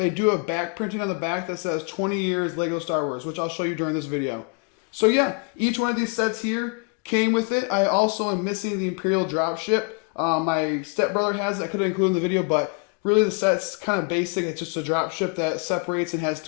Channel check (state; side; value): quieter; right; 34.2 dB